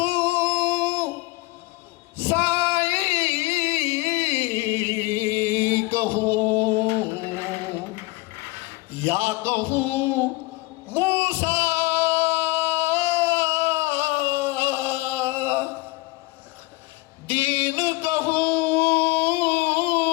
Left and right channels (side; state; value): right; quieter; 21.7 dB